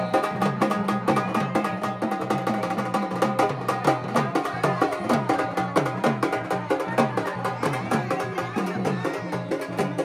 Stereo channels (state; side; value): identical; both; correlation 1.00